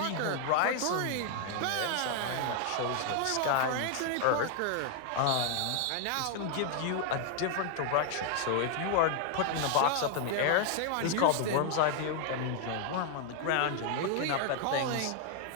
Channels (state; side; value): different; both; correlation 0.00